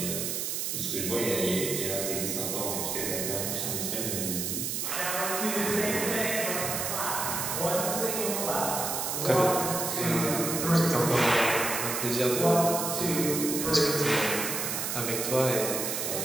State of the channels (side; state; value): right; noise; hiss, 1 dB below the sound